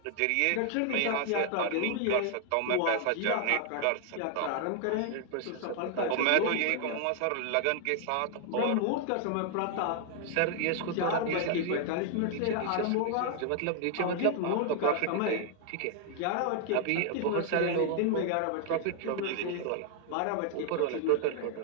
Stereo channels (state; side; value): different; both; correlation 0.00